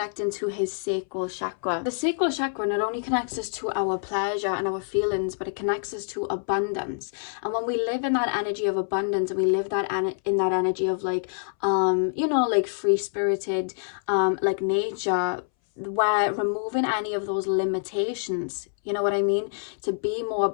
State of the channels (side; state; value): right; silent; 61 dB below the other